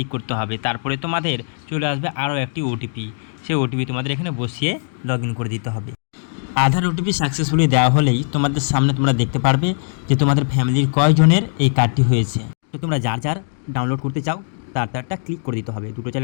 করতে হবে। তারপরে তোমাদের চলে আসবে আরও একটি ওটিপি, সেই ওটিপি তোমাদের এখানে বসিয়ে লগ ইন করে দিতে হবে। আধার ওটিপি সাকসেসফুলি দেওয়া হলেই তোমাদের সামনে তোমরা দেখতে পারবে যে তোমাদের ফ্যামিলির কয়জনের এই কার্ডটি হয়েছে। তো তোমরা যার যার ডাউনলোড করতে চাও তারটা ক্লিক করে দিতে হবে, দুটো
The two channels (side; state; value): right; silent; digital silence